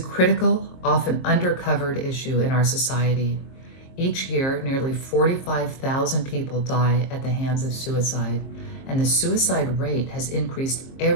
critical, often undercovered issue in our society. Each year, nearly 45,000 people die at the hands of suicide, and the suicide rate has increased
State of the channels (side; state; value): right; late; 22 ms